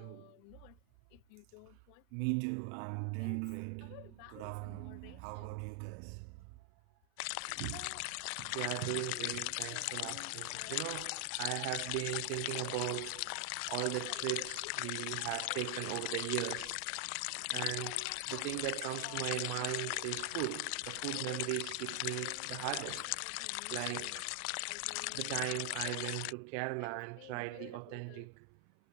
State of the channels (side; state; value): both; different; correlation 0.00